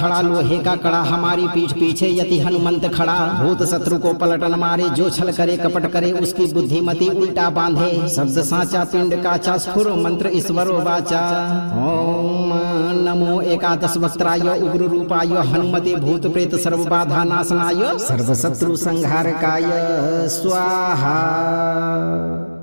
लोहे का कड़ा, हमारी पीठ पीछे यति हनुमंत खड़ा। भूत शत्रु को पलटन मारे, जो छल करे कपट करे, उसकी बुद्धिमति उल्टा बांधे। शब्द साचा पिंड काचा, स्फुर मंत्र ईश्वरो वाचा। ओम नमो एकादश वक्त्राय, उग्र रूपाय, हनुमते भूत प्रेत सर्व बाधा नाशनाय, सर्व शत्रु संहारकाय स्वाहा।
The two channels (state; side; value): inverted; both; correlation -1.00